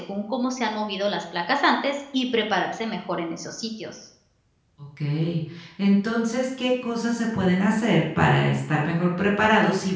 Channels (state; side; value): identical; both; correlation 1.00